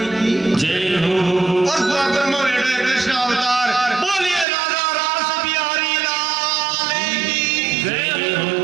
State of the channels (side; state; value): left; drops out; at 4.5 s